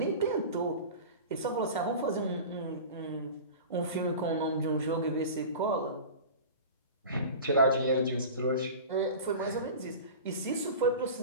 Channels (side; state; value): both; inverted; correlation -0.34